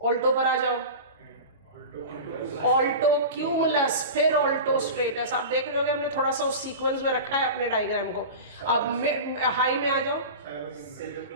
Alto पर आ जाओ, ऑल्टो क्यूमुलस, फिर ऑल्टो स्ट्रेटस। आप देख रहे हो हमने थोड़ा सा उस सीक्वेंस में रखा है अपने डायग्राम को। अब हाई में आ जाओ,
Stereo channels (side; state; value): both; inverted; correlation -0.30